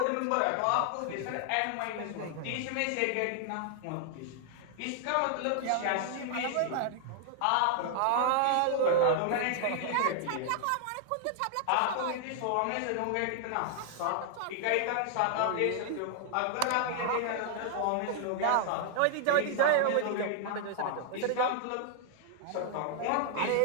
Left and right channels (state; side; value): different; both; correlation 0.00